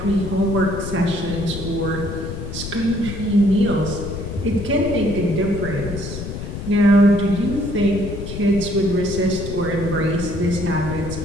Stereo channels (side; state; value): left; noise; rumble, 7 dB below the sound